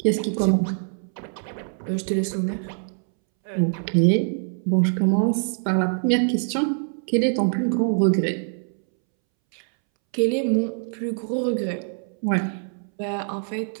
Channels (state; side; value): silent; left; 63 dB below the other